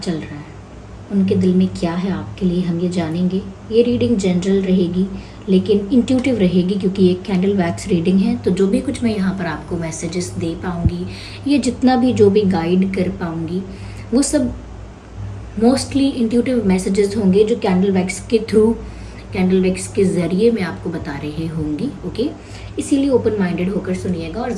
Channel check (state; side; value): identical; both; correlation 1.00